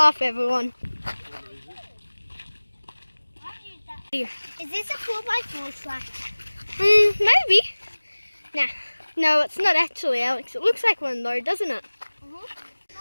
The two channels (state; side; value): inverted; both; correlation -1.00